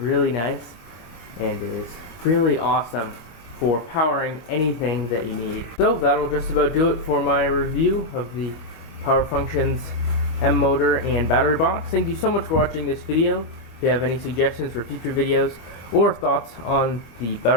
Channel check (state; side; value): late; right; 25 ms